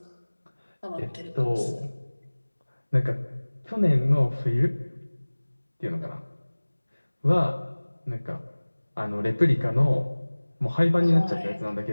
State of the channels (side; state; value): both; inverted; correlation -1.00